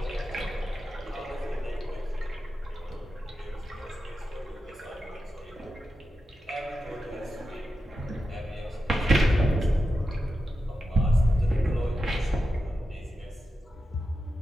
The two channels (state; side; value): normal; both; correlation 0.90